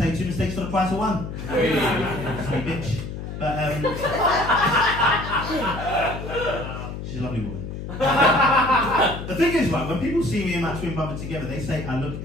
2 mistakes for the price of 1. Sweet bitch. But she's a lovely woman. The thing is, right, when people see me and my twin brother together, they say I look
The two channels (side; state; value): left; noise; hum, 8 dB below the sound